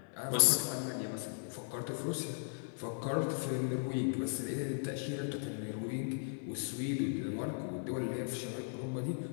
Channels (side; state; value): right; silent; digital silence